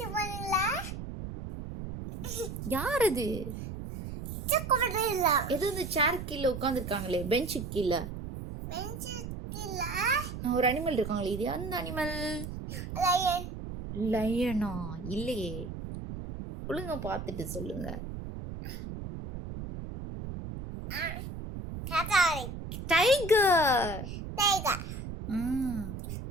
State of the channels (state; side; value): noise; right; rumble, 8 dB below the sound